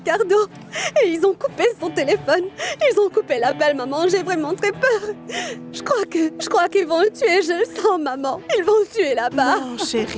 et ils ont coupé son téléphone. Ils ont coupé l'appel, maman. J'ai vraiment très peur. Je crois qu'ils vont le tuer. Je le sens, maman. Ils vont le tuer là-bas. Non,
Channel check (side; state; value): both; identical; correlation 1.00